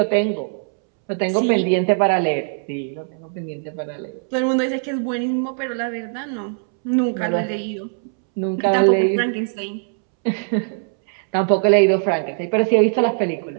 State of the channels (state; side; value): silent; left; 65 dB below the other